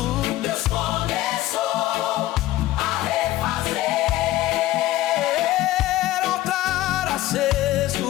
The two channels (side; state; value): right; quieter; 15.8 dB